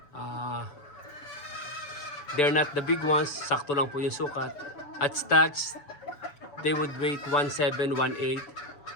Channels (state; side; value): late; right; 7.0 ms